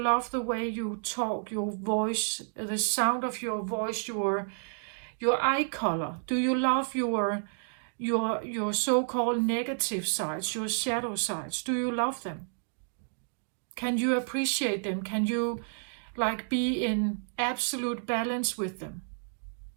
the way you talk, your voice, the sound of your voice, your eye color? Do you love your so-called negative sides, your shadow sides? Do you love them? Can you appreciate them? Can you like be in absolute balance with them?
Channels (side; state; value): left; silent; digital silence